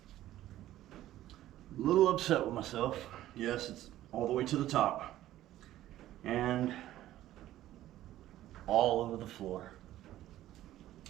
A little upset with myself. Yes, it's all the way to the top. And all over the floor.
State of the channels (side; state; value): left; quieter; 14.0 dB